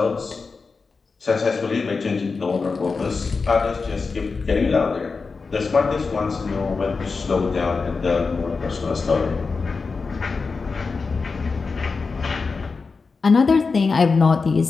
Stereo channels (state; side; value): quieter; right; 4.5 dB